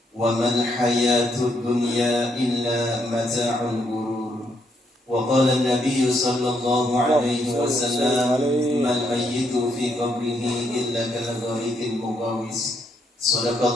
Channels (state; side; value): normal; both; correlation 0.75